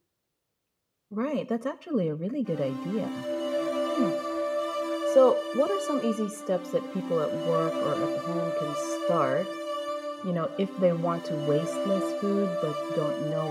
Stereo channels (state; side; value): identical; both; correlation 1.00